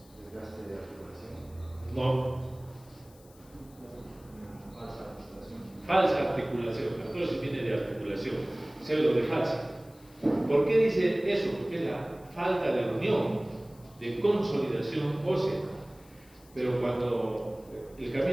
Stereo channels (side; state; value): left; noise; hiss, 27 dB below the sound